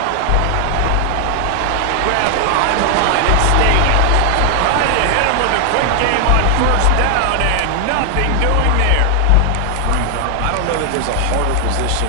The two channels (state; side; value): different; both; correlation 0.00